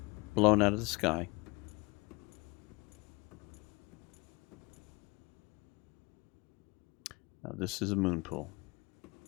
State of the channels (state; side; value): quieter; right; 25.5 dB